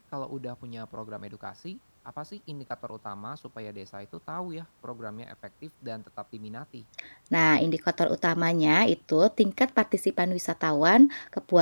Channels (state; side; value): inverted; both; correlation -1.00